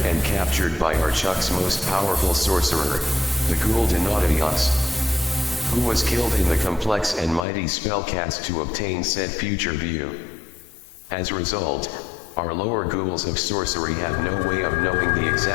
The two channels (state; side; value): drops out; right; at 7.5 s